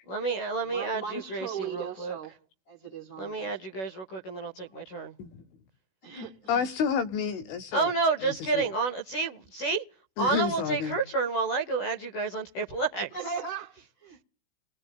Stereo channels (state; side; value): late; right; 16 ms